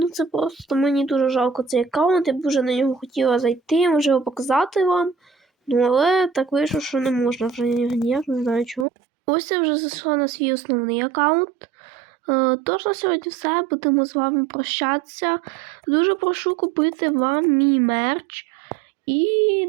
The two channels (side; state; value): left; drops out; at 8.8 s